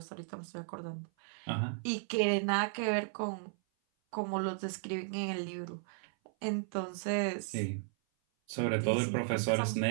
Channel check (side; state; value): left; silent; 54 dB below the other